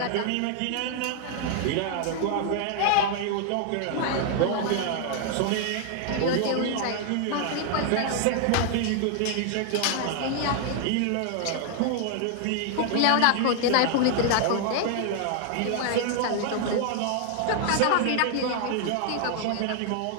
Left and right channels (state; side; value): different; both; correlation 0.00